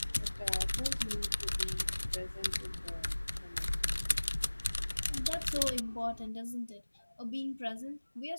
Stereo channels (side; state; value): both; inverted; correlation -1.00